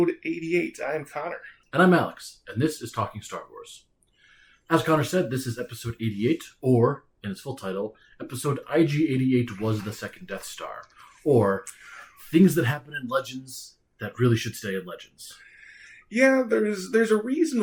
88. I am Connor. And I'm Alex, and this is Talking Star Wars. As Connor said, this is episode 88, or, in its full title, episode IG88 was the second Death Star, or things that happen in Legends that really should stay in Legends. Yeah, there's a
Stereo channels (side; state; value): both; identical; correlation 1.00